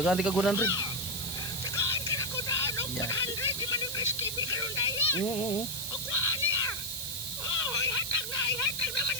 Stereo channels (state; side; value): noise; right; hiss, 5 dB below the sound